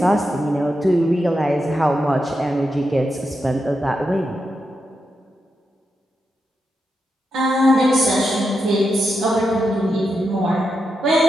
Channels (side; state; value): both; normal; correlation 0.86